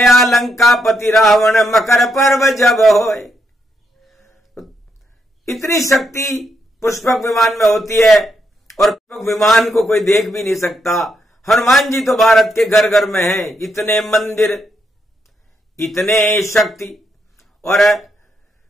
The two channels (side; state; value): both; normal; correlation 0.79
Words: लंकापति रावण मकर पर्व जब होए। इतनी शक्ति पुष्पक विमान में होती है और पुष्पक विमान को कोई देख भी नहीं सकता। हनुमान जी तो भारत के घर घर में हैं। इतने मंदिर, इतने शक्ति, और